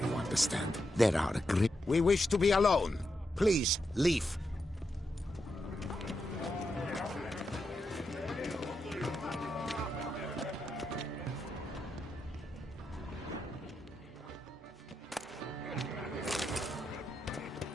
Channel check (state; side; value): normal; both; correlation 0.85